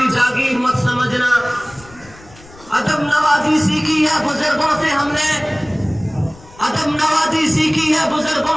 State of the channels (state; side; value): noise; left; rumble, 23 dB below the sound